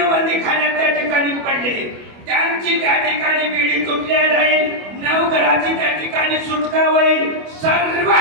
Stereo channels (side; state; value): left; late; 25 ms